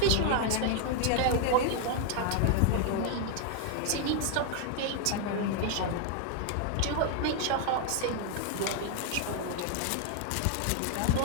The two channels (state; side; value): different; both; correlation 0.00